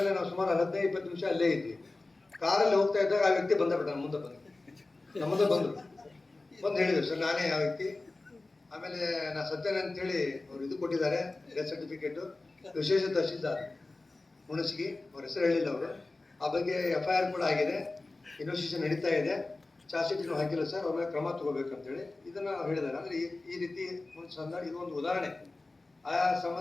ನಾವು ಸುಮಾರು 15-20 ನಿಮಿಷ ಅಲ್ಲೇ ಇದ್ವಿ. ಕಾರಲ್ಲಿ ಹೋಗ್ತಾ ಇದ್ದಾಗ ಆ ವ್ಯಕ್ತಿ ಬಂದ ಮುಂದೆ ಬಂದರು, ಬಂದು ಹೇಳಿದ್ರು ಸರ್ ನಾನೇ ಆ ವ್ಯಕ್ತಿ. ಆಮೇಲೆ ನಾ ಸತ್ತೇನೆ ಅಂತೇಳಿ ಅವ್ರು ಇದು ಕೊಟ್ಟಿದ್ದಾರೆ ಡೆತ್ ಸರ್ಟಿಫಿಕೇಟು. ವಿಶೇಷ ತಹಶೀಲ್ದಾರ್ ಹುಣಸಗಿ, ಅವ್ರ ಹೆಸರು ಹೇಳಿಲ್ಲ ಅವರು. ಆ ಬಗ್ಗೆ FIR ಕೂಡ ಆಗಿದೆ, ಇನ್ವೆಸ್ಟಿಗೇಷನ್ ನಡೀತಾ ಇದೆ. ಚಾರ್ಜ್ ಶೀಟ್ ಹಾಕಿಲ್ಲ ಸರ್, ಅವ್ರ ಮೇಲೆ ಕ್ರಮ ತಗೋಬೇಕಂತೇಳಿ ಇದನ್ನ ಹೇಳಿದ್ದಾರೆ. ಅಂದ್ರೆ ಈ ರೀತಿ ಒಂದು ಸಂದರ್ಭ, ಇದು ಒಂದು ಉದಾಹರಣೆ. ಆ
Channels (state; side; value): quieter; right; 3.2 dB